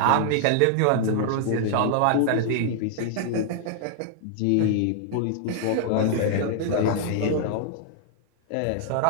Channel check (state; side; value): different; both; correlation 0.00